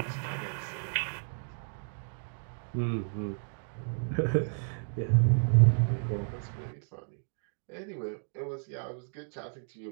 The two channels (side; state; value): left; silent; digital silence